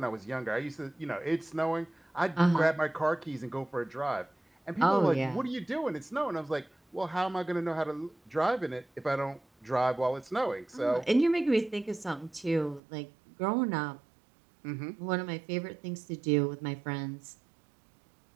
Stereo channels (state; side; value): drops out; left; at 12.8 s